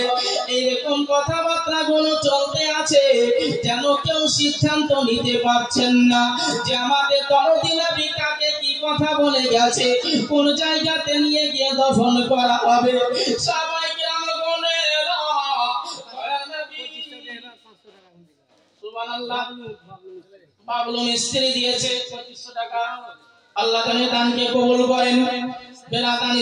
এইরকম কথাবার্তা গুলো চলতে আছে, যেন কেউ সিদ্ধান্ত নিতে পারছেন না যে আমাদের দরদি নবী কাকে কি কথা বলে গেছে, কোন জায়গাতে নিয়ে গিয়ে দাফন করা হবে। সবাই কেরামগণেরা সুবহানাল্লাহ, বাবলু মিস্ত্রি দিয়েছে 2500 টাকা। আল্লাহ তাআলা দানকে কবুল করেন। বেরাদান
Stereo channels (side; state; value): both; identical; correlation 1.00